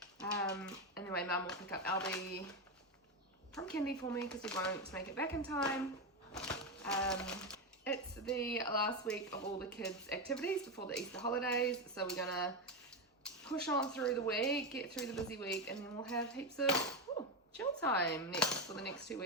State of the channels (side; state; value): both; normal; correlation 0.11